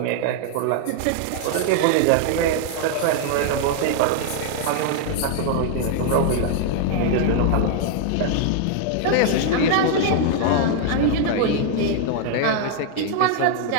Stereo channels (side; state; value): both; different; correlation 0.00